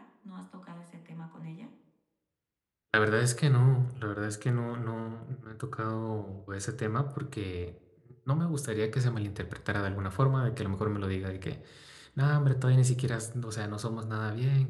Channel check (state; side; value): identical; both; correlation 1.00